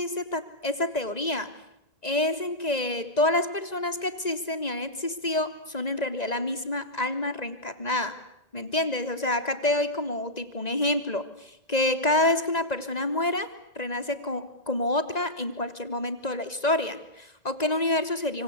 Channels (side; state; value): right; late; 1.9 ms